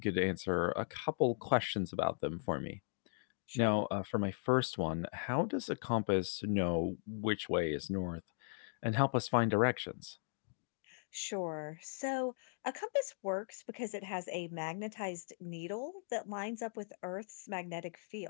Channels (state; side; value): silent; right; digital silence